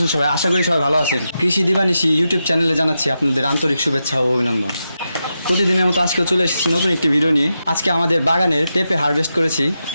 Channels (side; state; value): both; inverted; correlation -0.88